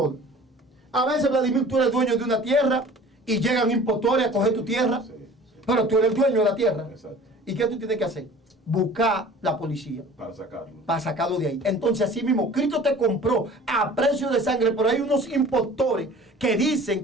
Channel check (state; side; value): normal; both; correlation 0.46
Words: A veces, Vladimir, tú eres dueño de una tierra y llegan impostores a coger tu tierra, Sí, sí. pero tú eres el dueño de la tierra. Exacto. ¿Y qué tú tienes que hacer? Buscar la policía Para sacarlo. para sacarlo de ahí. Entonces, así mismo, Cristo te compró a precio de sangre, pero hay unos impostores que dicen